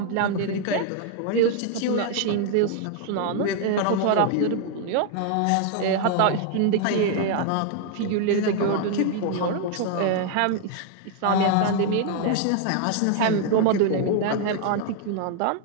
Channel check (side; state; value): both; different; correlation 0.00